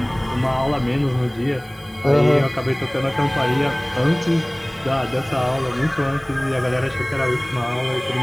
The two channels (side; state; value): right; noise; hiss, 29 dB below the sound